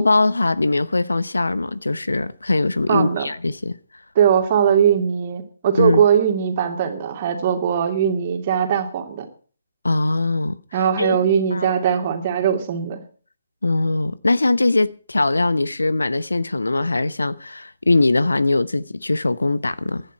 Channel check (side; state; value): both; inverted; correlation -0.77